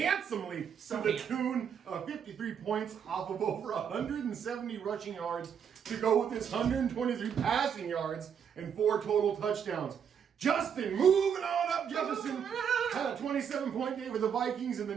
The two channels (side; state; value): left; quieter; 7.7 dB